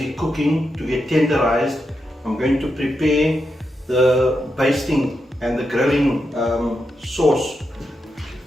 cooking to get tenderized, I'm going to prepare the basting and the grilling sauce.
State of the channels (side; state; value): both; normal; correlation 0.86